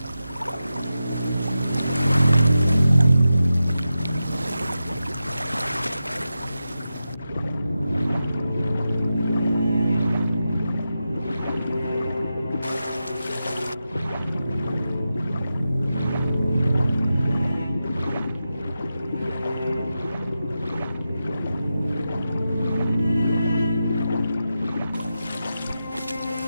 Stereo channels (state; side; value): inverted; both; correlation -0.91